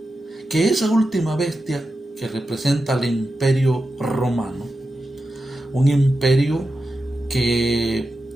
que esa última bestia que representa al imperio romano, un imperio que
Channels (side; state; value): both; normal; correlation 0.90